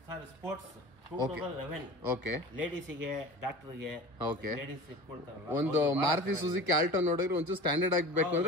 Sir sports 2011. ಓಕೆ, ಲೇಡೀಸಿಗೆ, ಡಾಕ್ಟರ್ಗೆ, ಓಕೆ, ಲೇಡೀಸ್ ಇಟ್ಕೊಳ್ತಾರಲ್ಲ, ಒಂದು ಮಾರುತಿ ಸುಜುಕಿ ಆಲ್ಟೋ ನೋಡಿದ್ರೆ ಒಂಚೂರು ಸ್ಟ್ಯಾಂಡರ್ಡ್ ಆಗಬೇಕು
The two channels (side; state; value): left; late; 1.0 ms